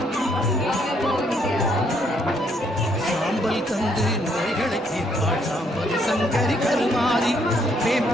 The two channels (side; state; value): both; normal; correlation 0.70